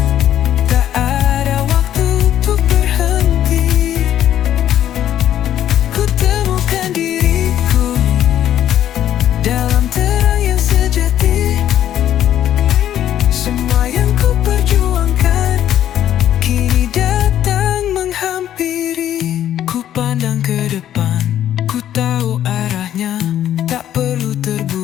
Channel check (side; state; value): right; quieter; 11.3 dB